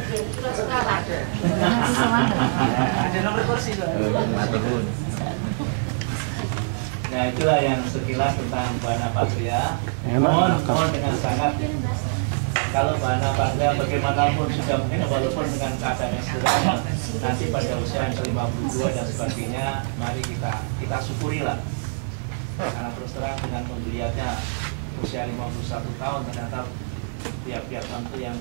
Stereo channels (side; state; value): left; silent; digital silence